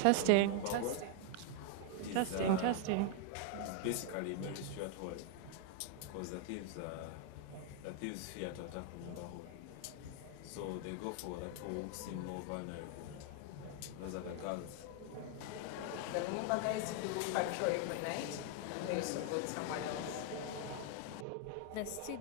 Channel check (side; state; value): both; different; correlation 0.00